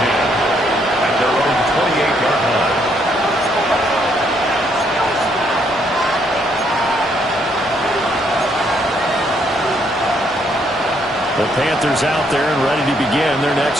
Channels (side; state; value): both; normal; correlation 0.71